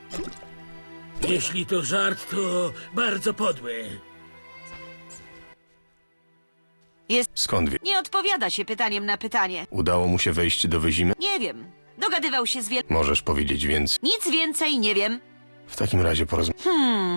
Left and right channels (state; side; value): inverted; both; correlation -1.00